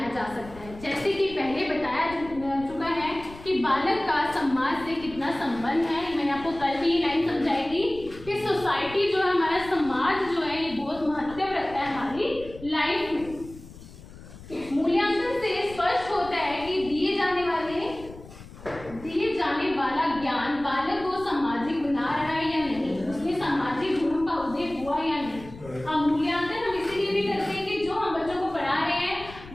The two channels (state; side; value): noise; left; rumble, 17 dB below the sound